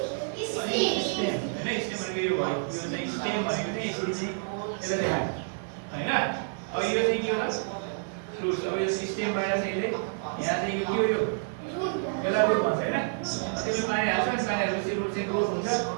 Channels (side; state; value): left; silent; digital silence